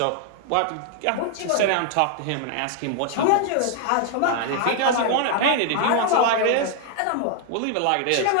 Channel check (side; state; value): both; different; correlation 0.00